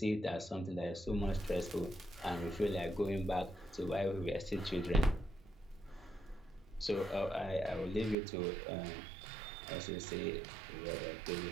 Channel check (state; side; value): drops out; left; at 8.2 s